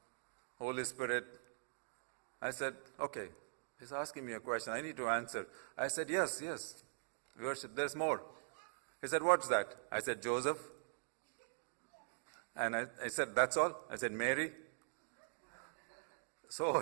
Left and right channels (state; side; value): silent; left; digital silence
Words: Holy Spirit. I said, okay, he's asking me a question, I need to answer. I said, yes, we worship, there's more. He said, what's that? I said, Joseph. And I said, that's all? I said, Mary. So